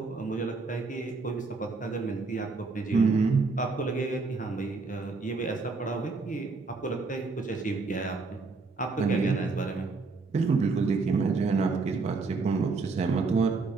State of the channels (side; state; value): left; quieter; 4.1 dB